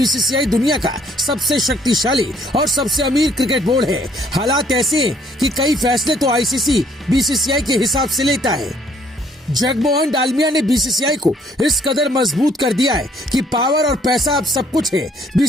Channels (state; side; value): normal; both; correlation 0.64